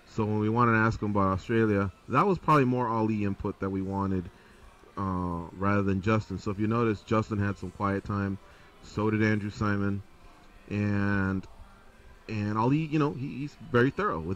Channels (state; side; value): identical; both; correlation 1.00